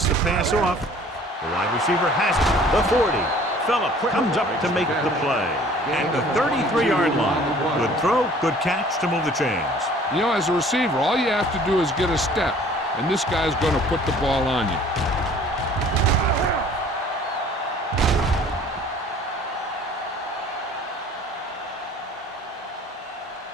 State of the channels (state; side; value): normal; both; correlation 0.52